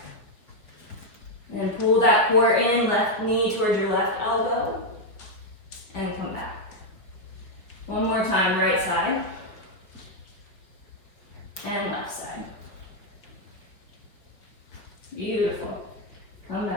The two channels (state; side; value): late; right; 5.3 ms